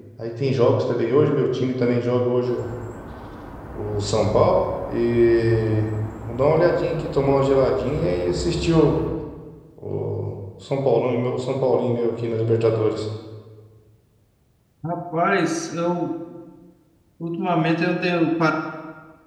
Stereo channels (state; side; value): identical; both; correlation 1.00